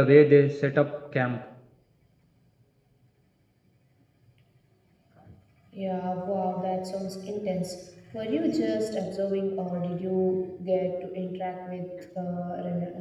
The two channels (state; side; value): identical; both; correlation 1.00